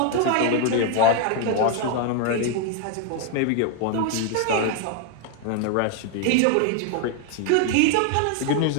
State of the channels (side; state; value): both; different; correlation 0.00